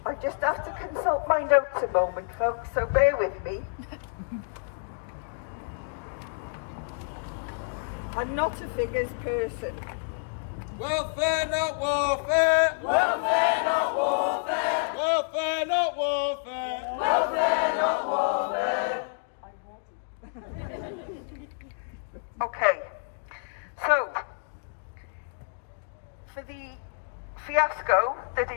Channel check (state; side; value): silent; right; digital silence